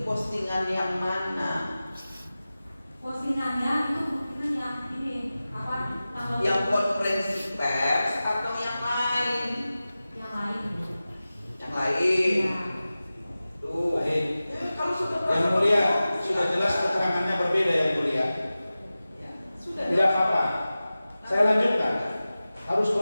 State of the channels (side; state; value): both; inverted; correlation -0.96